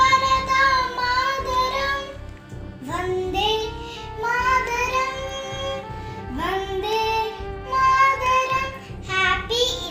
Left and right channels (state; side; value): identical; both; correlation 1.00